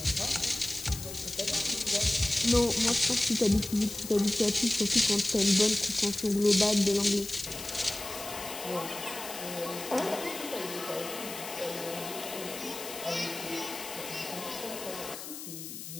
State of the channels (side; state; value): left; noise; hiss, 10 dB below the sound